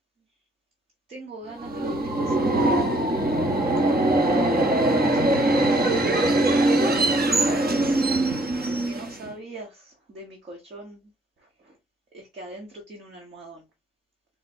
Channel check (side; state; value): both; normal; correlation 0.64